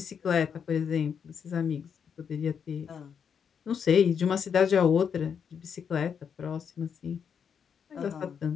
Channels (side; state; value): right; quieter; 7.2 dB